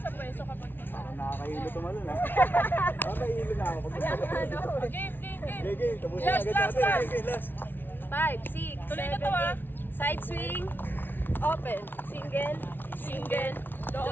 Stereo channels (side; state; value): right; late; 0.099 ms